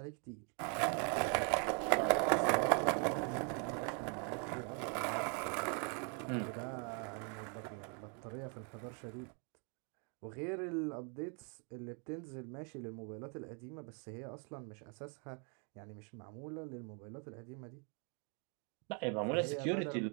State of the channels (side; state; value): left; quieter; 37.9 dB